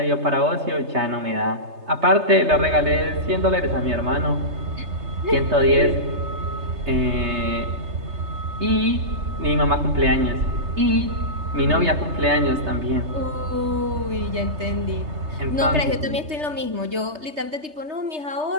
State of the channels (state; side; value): late; left; 3.3 ms